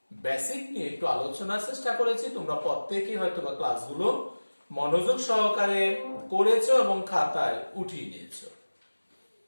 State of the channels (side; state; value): both; inverted; correlation -1.00